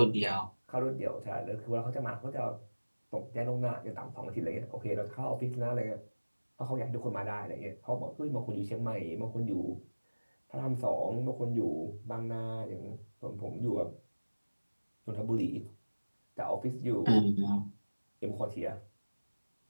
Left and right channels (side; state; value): both; inverted; correlation -1.00